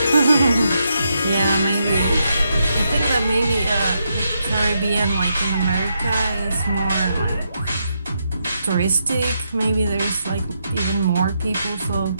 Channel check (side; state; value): both; inverted; correlation -0.81